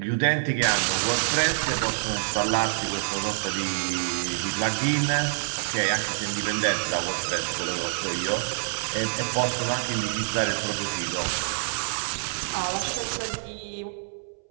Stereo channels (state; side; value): silent; left; 61 dB below the other